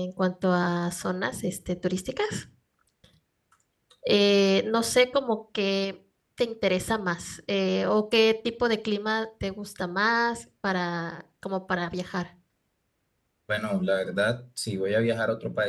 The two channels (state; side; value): identical; both; correlation 1.00